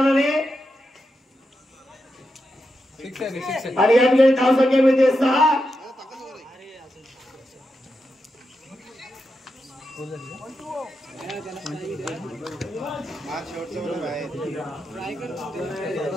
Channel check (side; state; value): both; normal; correlation 0.87